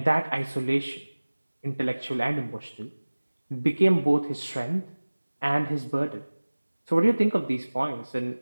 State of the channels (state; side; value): inverted; both; correlation -1.00